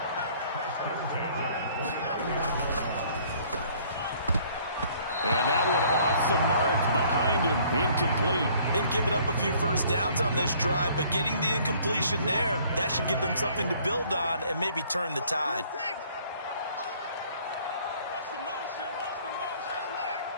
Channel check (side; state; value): both; inverted; correlation -0.58